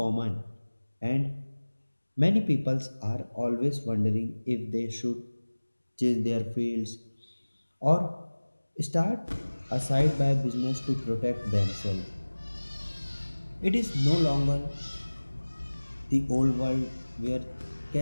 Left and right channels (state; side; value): inverted; both; correlation -1.00